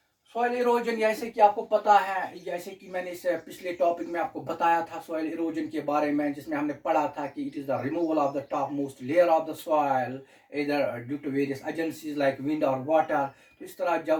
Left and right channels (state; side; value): identical; both; correlation 1.00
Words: सॉइल इरोजन जैसे कि आपको पता है, जैसे कि मैंने इस पिछले टॉपिक में आपको बताया था सॉइल इरोजन के बारे में, जिसमें हमने पढ़ा था कि it is the removal of the top most layer of the soil इधर due to various agencies like wind और वाटर। तो इस तरह